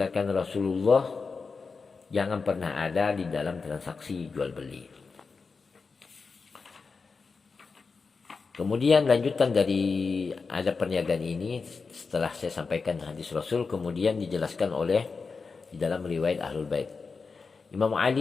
Rasulullah jangan pernah ada di dalam transaksi jual beli. Kemudian lanjutan dari adab perniagaan ini setelah saya sampaikan hadis Rasul, kemudian dijelaskan oleh di dalam riwayat Ahlul Bait. Imam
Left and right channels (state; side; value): quieter; right; 4.7 dB